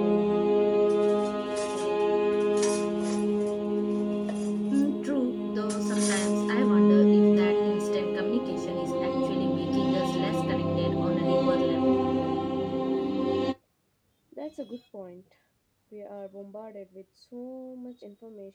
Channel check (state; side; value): identical; both; correlation 1.00